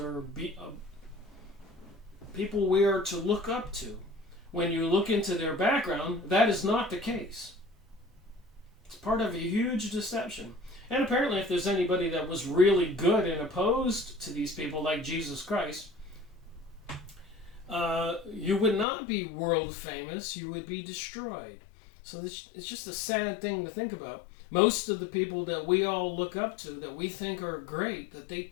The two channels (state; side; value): drops out; right; at 18.9 s